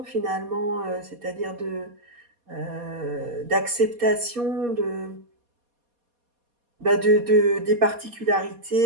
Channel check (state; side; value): late; left; 4.2 ms